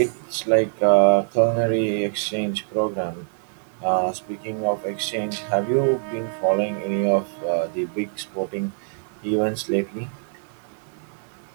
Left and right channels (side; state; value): left; silent; digital silence